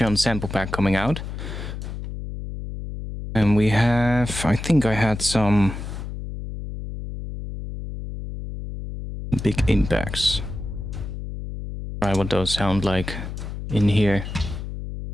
sample pack coming out. And we have... I think I had some... big impacts. Try what those sound like in here.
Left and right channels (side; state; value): left; noise; hum, 8 dB below the sound